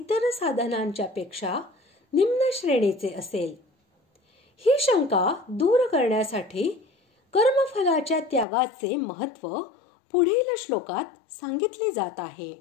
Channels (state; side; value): drops out; right; at 8.5 s